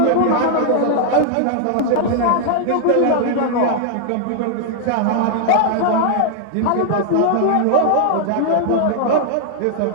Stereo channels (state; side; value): different; both; correlation 0.00